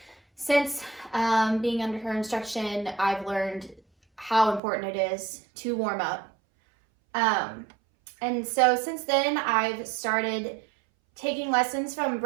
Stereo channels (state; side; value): drops out; left; at 4.6 s